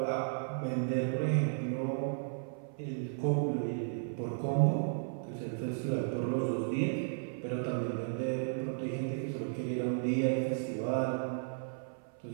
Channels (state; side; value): silent; left; 55 dB below the other